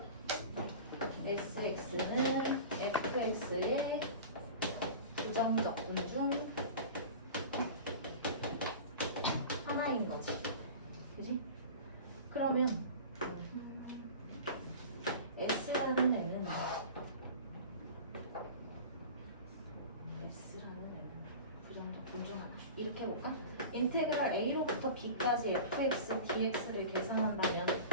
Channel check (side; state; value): both; inverted; correlation -0.36